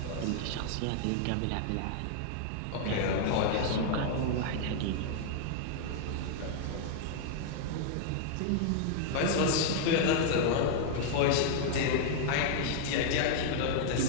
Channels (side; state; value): both; different; correlation 0.00